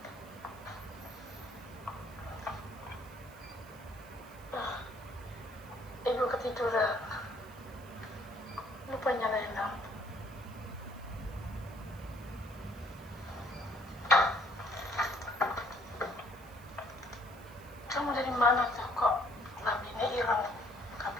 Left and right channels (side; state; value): right; noise; hiss, 23 dB below the sound